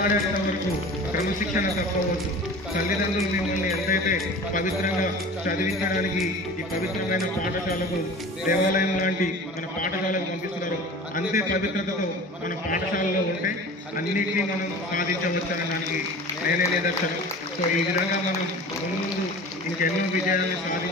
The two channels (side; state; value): both; normal; correlation 0.39